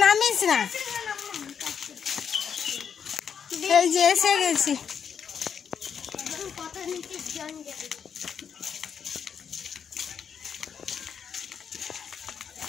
নামিস না। এই যে এসে গেছি।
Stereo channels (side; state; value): right; quieter; 7.4 dB